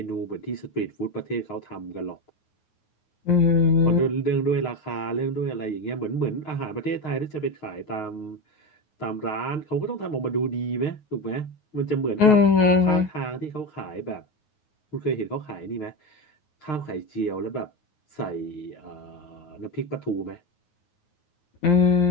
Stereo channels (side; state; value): right; late; 9.4 ms